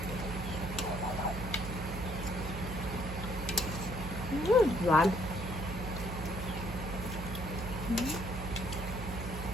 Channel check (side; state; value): right; noise; hum, 6 dB below the sound